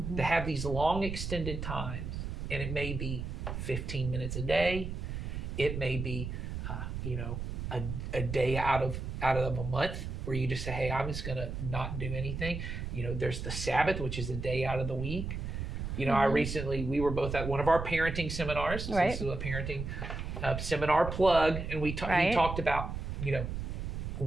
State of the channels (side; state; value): right; noise; rumble, 5 dB below the sound